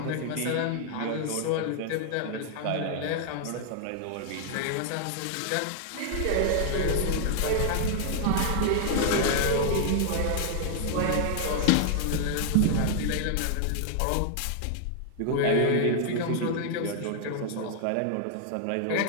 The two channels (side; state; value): both; different; correlation 0.00